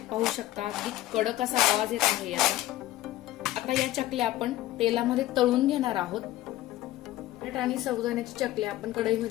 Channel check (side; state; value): right; quieter; 15.6 dB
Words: पाहू शकता, अगदी कडक असा आवाज येत आहे याचा. आता या चकल्या आपण तेलामध्ये तळून घेणार आहोत. बटाटा आणि साबुदाण्याची चकल्या आपण